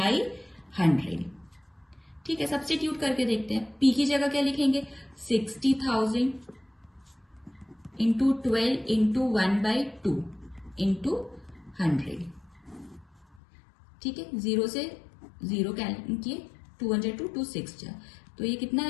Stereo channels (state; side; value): drops out; right; at 13.4 s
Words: 100, ठीक है। सब्स्टिट्यूट करके देखते हैं। P की जगह क्या लिखेंगे? 60,000 इंटू 12 इंटू 1/2 इंटू 100, ठीक है। 0 से 0 कैंसिल किए, 2 1 2 2 6 जा, तो ये कितना